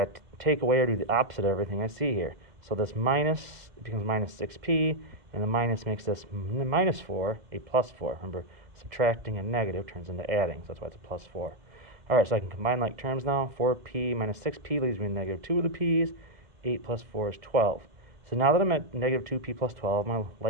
to take away or do the opposite of everything I see here. So this minus becomes minus 6p, and the minus makes this minus 4 a plus 4. Remember, subtracting a negative turns into adding, so that's why it's a plus 4. All right, so I can combine like terms now. 4p minus 6p leaves me negative 2 of the p's. 8 plus 4 is 12. So now that I'm at negative 2p plus 12, my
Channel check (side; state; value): left; late; 2.0 ms